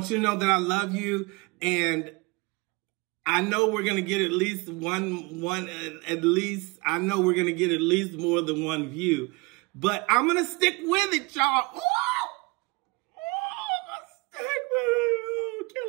you to know that I love you, and I know we're going to get at least I know we're going to get at least more than one view, but I'm going to stick with it, y'all. I'm going to stick with it. Oh,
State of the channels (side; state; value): left; quieter; 26.7 dB